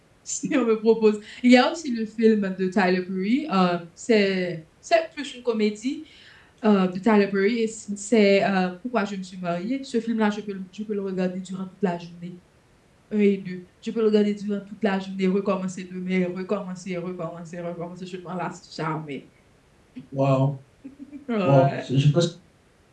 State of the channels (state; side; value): identical; both; correlation 1.00